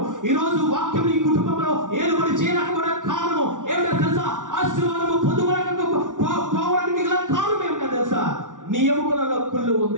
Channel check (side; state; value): left; late; 0.87 ms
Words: ఈ రోజు వాక్యం ఈ కుటుంబంలో ఏలుబడి చేయలేకపోవడానికి కారణము ఏమిటో తెలుసా, ఆశీర్వాదము పొందుకోలేకపోవడానికి గల కారణం ఏమిటో తెలుసా, నీ ఎముకలలో కుళ్ళు